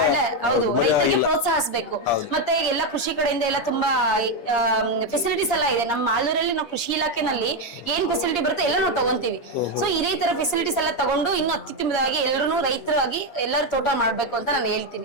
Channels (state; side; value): late; right; 8.5 ms